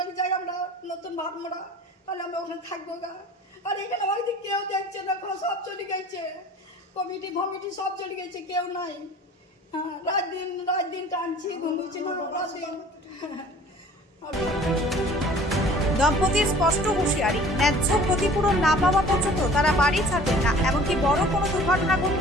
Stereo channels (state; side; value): normal; both; correlation 0.48